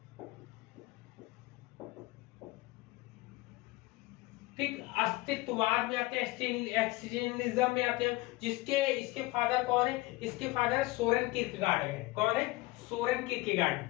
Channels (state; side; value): quieter; right; 20.7 dB